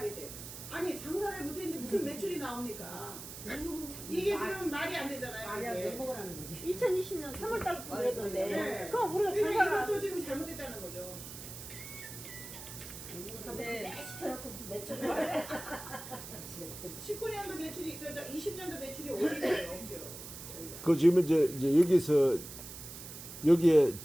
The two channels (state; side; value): noise; right; hiss, 11 dB below the sound